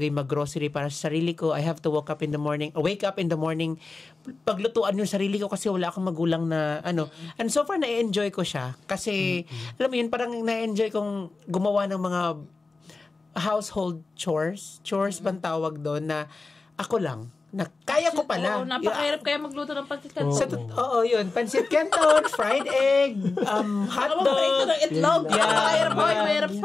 yung mag-grocery para sa sarili ko. I have to wake up in the morning, paglutuan yung sarili ko kasi wala akong magulang na And so far, na-enjoy ko siya. Kasi, alam mo yun, parang na-enjoy kong gumawa ng mga household chores. Chores bang tawag doon na ako lang. Na kaya ko pala. Napakahirap kaya magluto ng pancit canton. Oo, yun. Pancit canton, fried egg, hotdog. Itlog. Mahirap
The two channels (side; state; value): right; quieter; 3.7 dB